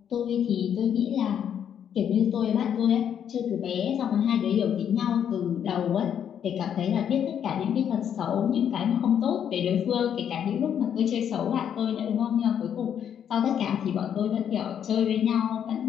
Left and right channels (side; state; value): right; quieter; 8.9 dB